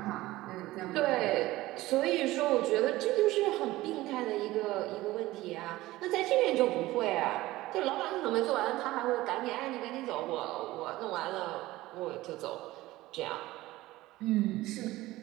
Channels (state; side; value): quieter; left; 17.7 dB